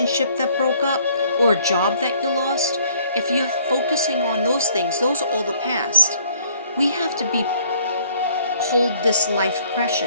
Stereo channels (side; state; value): both; inverted; correlation -0.60